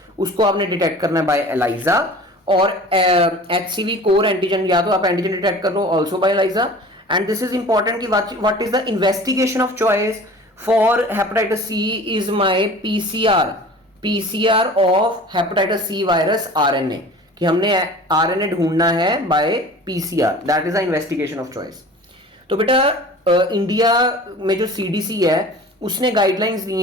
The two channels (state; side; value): normal; both; correlation 0.42